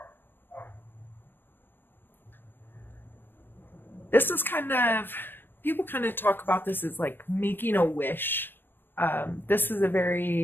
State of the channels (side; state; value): right; late; 0.096 ms